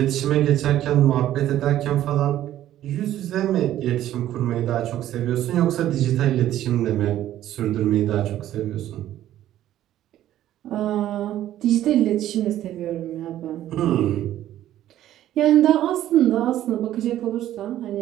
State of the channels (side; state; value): left; quieter; 12.7 dB